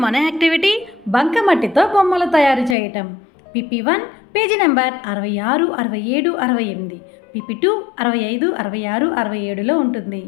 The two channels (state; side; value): drops out; right; at 2.8 s